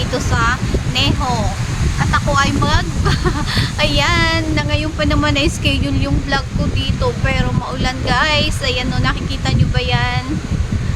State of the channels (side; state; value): both; identical; correlation 1.00